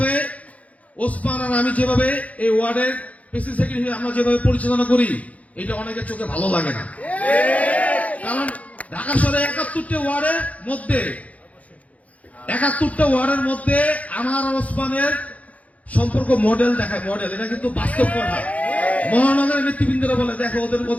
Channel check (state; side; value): late; right; 0.069 ms